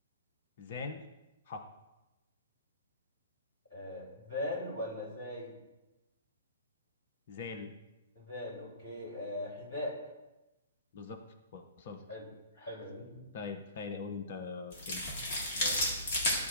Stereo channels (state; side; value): inverted; both; correlation -0.42